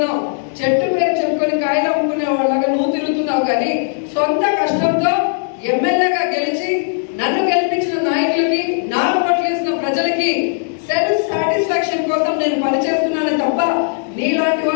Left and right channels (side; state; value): right; silent; digital silence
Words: చెట్టు పేరు చెప్పుకొని కాయలు అమ్ముకునే వాళ్ళగా నువ్వు తిరుగుతున్నావు. కానీ సొంత కష్టంతో ఎమ్మెల్యేగా గెలిచి నన్ను గెలిపించిన నాయకులకి, నాకు ఓట్లేసిన ప్రజలకి సెల్ఫ్ సాటిస్ఫాక్షన్ కోసం నేను పనిచేస్తున్నాను తప్ప నీలాంటి